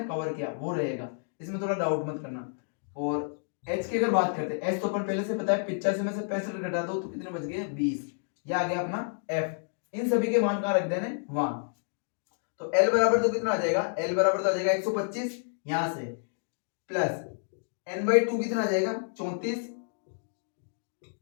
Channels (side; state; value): right; silent; digital silence